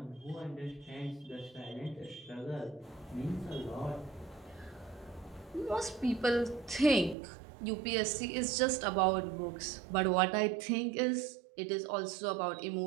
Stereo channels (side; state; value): left; drops out; at 7.2 s